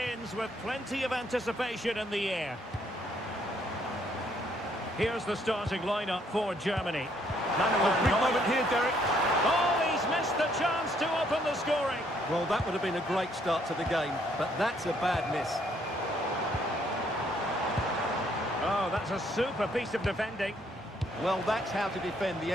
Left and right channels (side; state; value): both; normal; correlation 0.68